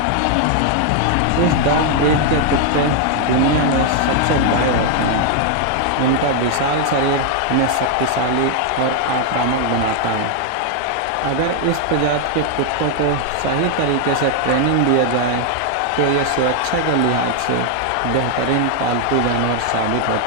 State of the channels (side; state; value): both; different; correlation 0.00